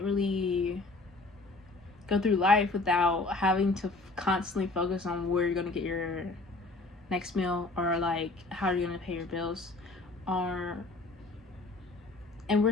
really go through life without having to constantly focus on where you're gonna get your next meal, or like how you're gonna pay your bills, or and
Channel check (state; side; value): quieter; right; 3.3 dB